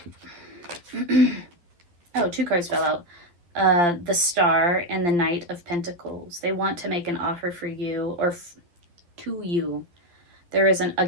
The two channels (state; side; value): late; left; 12 ms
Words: Oh, 2 cards fell out. The Star and the Knight of Pentacles. They want to make an offer for you or to you. There is,